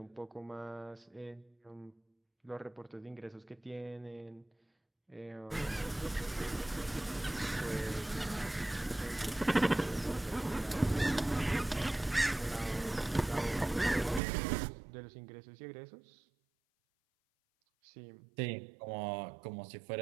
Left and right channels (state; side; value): drops out; left; at 14.2 s